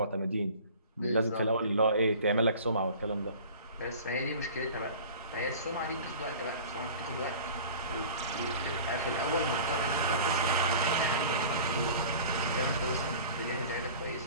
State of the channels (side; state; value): both; inverted; correlation -0.42